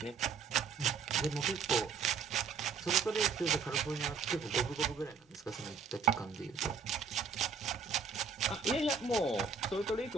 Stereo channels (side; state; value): left; quieter; 5.5 dB